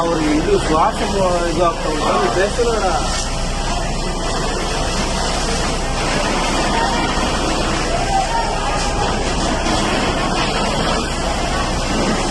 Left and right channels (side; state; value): both; identical; correlation 1.00